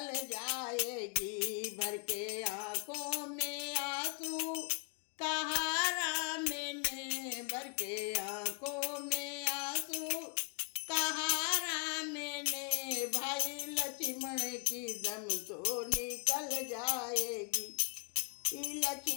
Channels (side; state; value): right; quieter; 39.6 dB